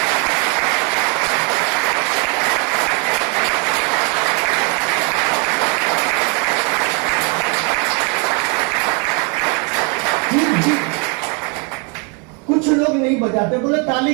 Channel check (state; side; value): quieter; left; 34.2 dB